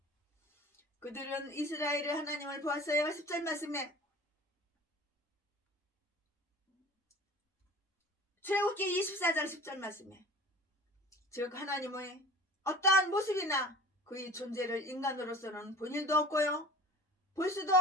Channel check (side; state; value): both; normal; correlation 0.41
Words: 그들은 이스라엘의 하나님을 보았어요. 10절 말씀에 출애굽기 24장 10절 말씀에 즉 하나님의 어떠한 모습이나 그의 존재를 인간으로서는 본 일도 없고요 볼 수도